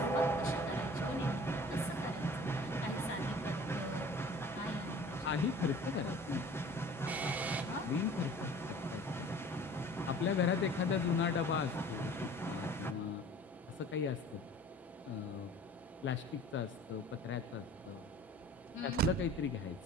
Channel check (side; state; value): both; normal; correlation 0.46